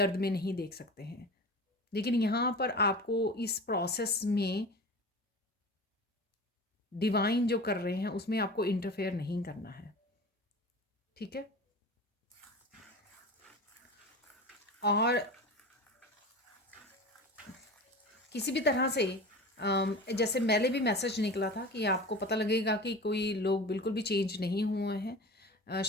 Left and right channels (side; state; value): both; normal; correlation 0.33